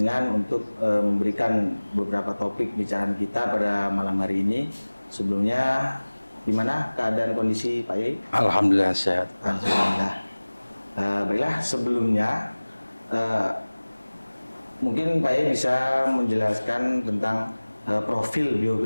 untuk memberikan beberapa topik bicaraan kita pada malam hari ini. Sebelumnya, gimana keadaan kondisi Pak Kiai? Alhamdulillah sehat. Alhamdulillah. Baiklah, sebelumnya mungkin Pak Kiai bisa menjelaskan tentang profil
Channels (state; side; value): inverted; both; correlation -1.00